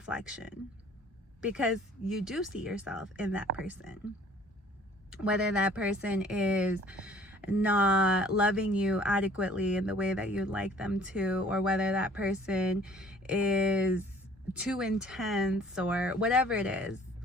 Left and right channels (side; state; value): both; normal; correlation 0.54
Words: because you do see yourself in that person. Whether that person is not loving you adequately in the way that you'd like them to, or whether that person is too intense, or whatever it is,